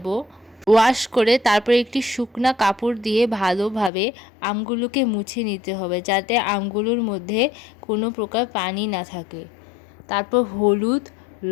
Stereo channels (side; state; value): right; drops out; at 3.9 s